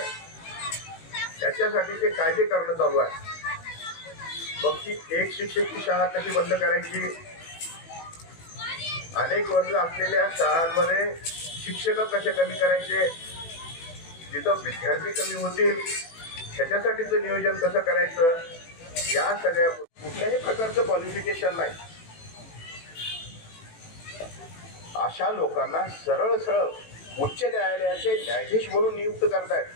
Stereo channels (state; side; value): late; right; 18 ms